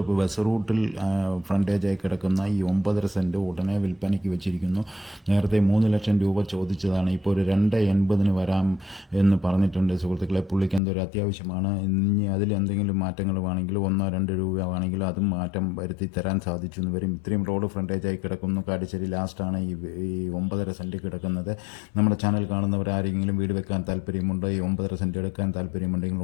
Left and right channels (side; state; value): right; drops out; at 10.8 s